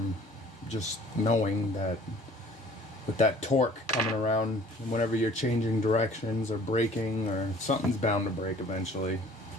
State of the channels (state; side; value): normal; both; correlation 0.51